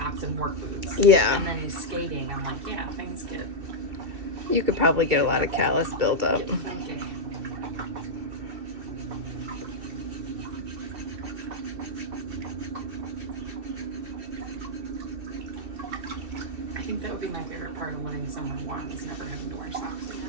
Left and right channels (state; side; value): late; left; 2.7 ms